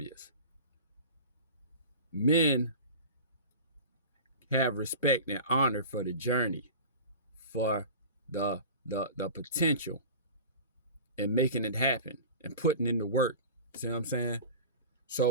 Men have respect and honor for the journey, for the potential, and making it happen and putting in the work. See what I'm saying?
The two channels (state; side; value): inverted; both; correlation -0.35